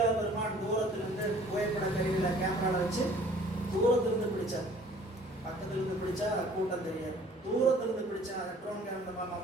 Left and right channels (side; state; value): both; normal; correlation 0.53